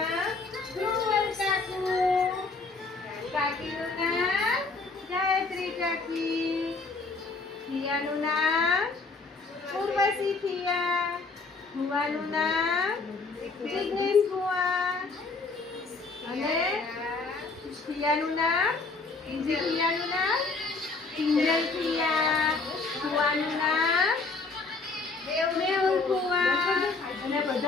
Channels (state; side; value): quieter; right; 4.0 dB